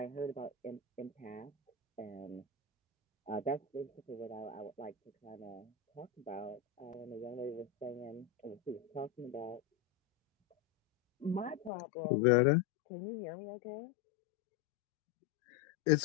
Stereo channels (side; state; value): right; drops out; at 11.7 s